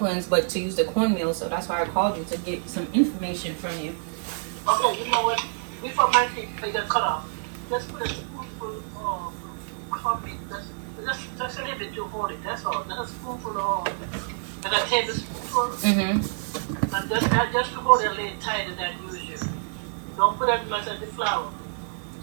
but to use the cornmeal. So that's why I called you to get some information from you. Okay, you know what? Before my teeth they get cut off, let's put a spoonful of coffee. Just a little bit to hold it. That's all. Just a spoonful of, like a tablespoonful. And just to hold it a little tighter than usual. Don't put as much as the flour.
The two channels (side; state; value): left; silent; digital silence